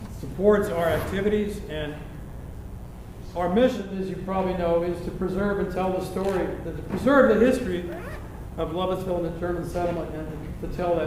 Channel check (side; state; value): both; identical; correlation 1.00